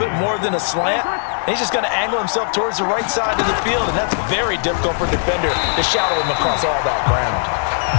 more than a slant. He's just going to angle himself towards the right side of the field, and that's very difficult for a defender to shadow him across all that ground.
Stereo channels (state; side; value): silent; right; digital silence